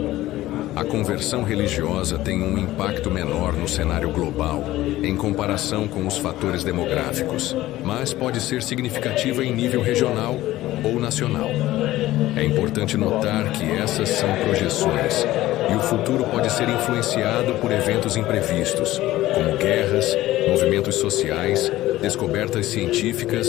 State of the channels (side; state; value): right; quieter; 15.9 dB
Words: A conversão religiosa tem um impacto menor no cenário global em comparação com os fatores demográficos, mas pode ser significativa em nível regional ou nacional. É importante notar que essas são projeções e o futuro pode ser influenciado por eventos imprevistos, como guerras, movimentos sociais, descobertas